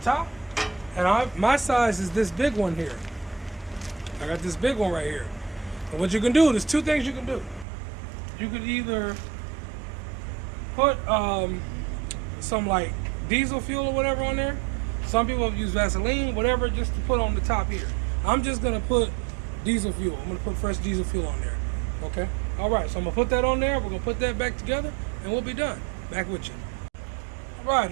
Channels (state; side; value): drops out; left; at 7.7 s